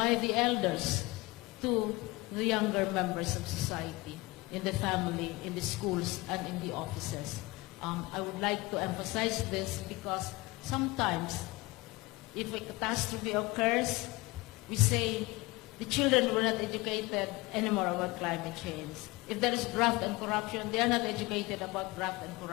the elders to the younger members of society, in the family, in the schools, and in the offices. I would like to emphasize this because sometimes if a catastrophe occurs, we say the children were not educated anymore about climate change. If there is graft and corruption, they are not educated about graft and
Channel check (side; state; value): right; quieter; 22.2 dB